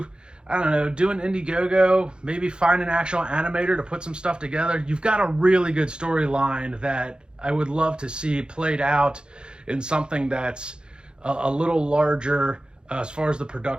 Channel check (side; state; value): left; late; 0.050 ms